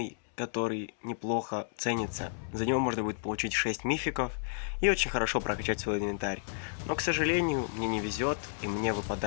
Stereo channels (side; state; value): right; silent; 57 dB below the other